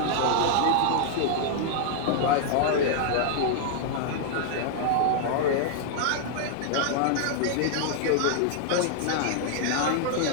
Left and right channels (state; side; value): different; both; correlation -0.01